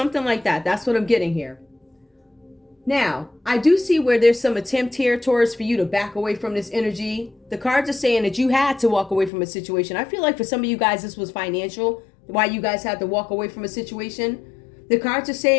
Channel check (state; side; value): drops out; right; at 9.3 s